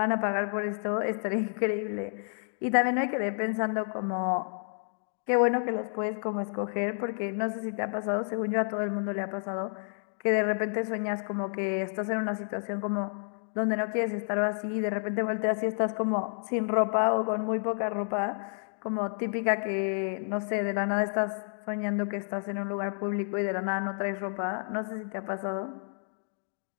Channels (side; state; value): right; silent; 58 dB below the other